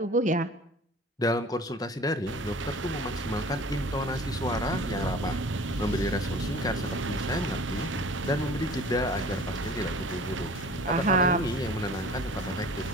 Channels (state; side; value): normal; both; correlation 0.45